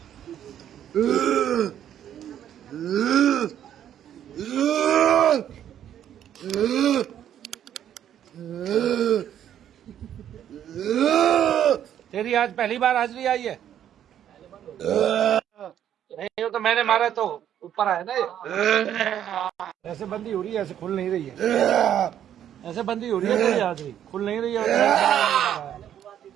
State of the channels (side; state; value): left; quieter; 10.3 dB